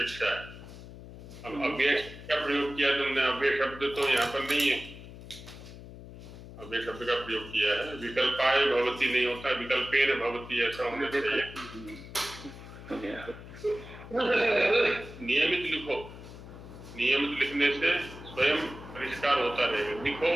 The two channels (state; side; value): noise; left; hum, 15 dB below the sound